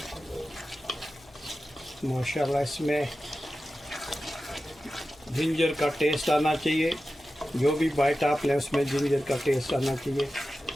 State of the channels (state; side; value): noise; left; hum, 28 dB below the sound